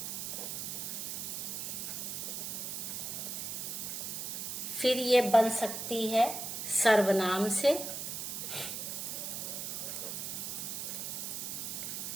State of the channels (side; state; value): right; noise; hiss, 4 dB below the sound